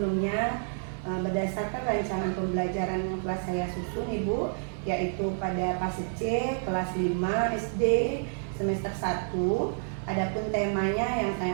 berdasarkan rancangan pembelajaran yang telah saya susun Ibu, yaitu pada fase C kelas 5 SD semester 1. Adapun temanya yang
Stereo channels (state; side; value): silent; left; 58 dB below the other